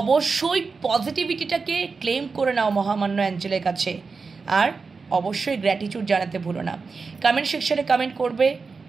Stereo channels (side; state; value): left; quieter; 4.6 dB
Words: পজিটিভিটিটাকে ক্লেম করে নাও মহামান্য অ্যাঞ্জেলের কাছে, আর অবশ্যই গ্র্যাটিটিউড জানাতে ভুলো না। কমেন্ট সেকশনে কমেন্ট করবে